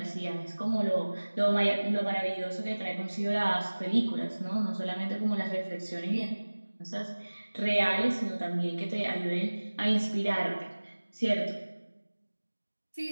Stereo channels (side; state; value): both; inverted; correlation -1.00